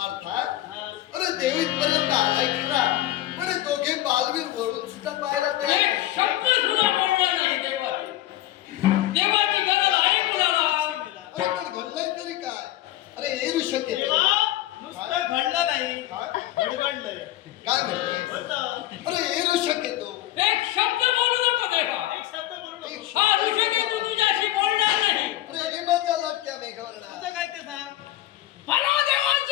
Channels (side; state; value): right; quieter; 14.8 dB